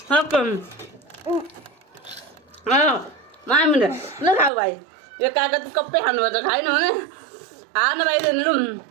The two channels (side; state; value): left; drops out; at 4.5 s